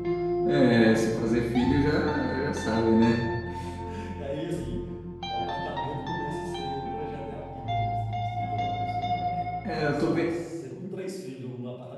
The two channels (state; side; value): identical; both; correlation 1.00